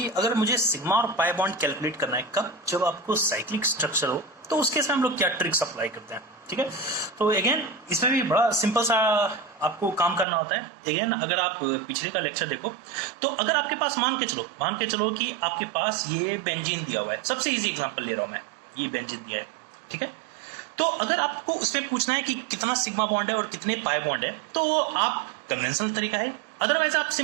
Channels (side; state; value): left; drops out; at 10.2 s